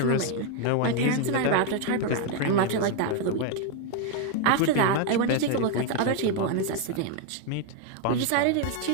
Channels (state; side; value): different; both; correlation 0.01